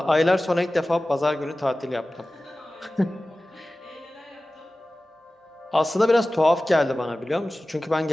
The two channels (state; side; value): normal; both; correlation 0.97